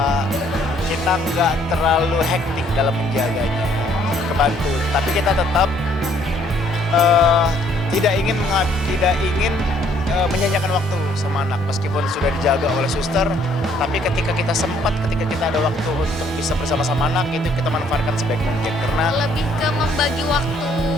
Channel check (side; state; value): both; normal; correlation 0.64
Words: kita nggak terlalu hektik dalam menjaganya, kebantu. Tapi kita tetap tidak ingin menyanyiakan waktu sama anak meskipun sudah dijaga oleh suster. Tapi ketika kita ada waktu untuk bisa bersama-sama anak, itu kita manfaatkan sebaik mungkin karena lebih ke membagi waktu.